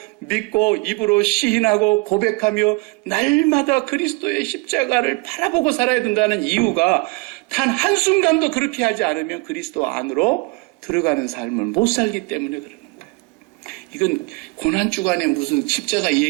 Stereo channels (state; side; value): quieter; left; 27.4 dB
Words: 믿고 입으로 시인하고 고백하며 날마다 그리스도의 십자가를 바라보고 살아야 된다는 이유가 단 한순간도 그렇게 하지 않으면 그리스도 안으로 들어가는 삶을 못 살기 때문에 그러는 거예요. 이건 고난주간에 무슨 십자가